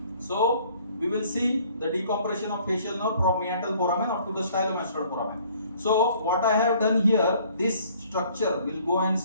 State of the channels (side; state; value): both; inverted; correlation -0.57